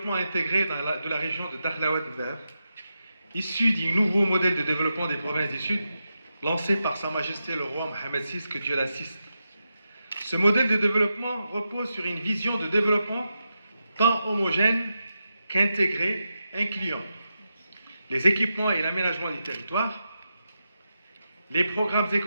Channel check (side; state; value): both; inverted; correlation -0.88